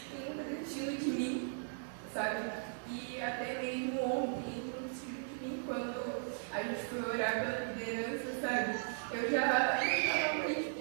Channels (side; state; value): left; silent; digital silence